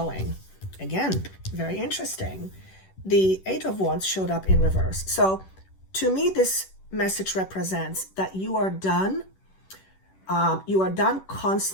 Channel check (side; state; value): right; late; 10 ms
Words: Again, very interesting. The 8 of Wands showed up in reverse. So to me, this message represents that you are done. You are done